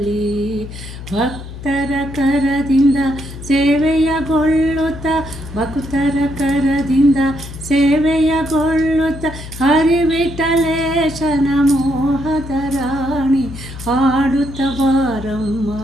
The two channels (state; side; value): noise; left; hum, 12 dB below the sound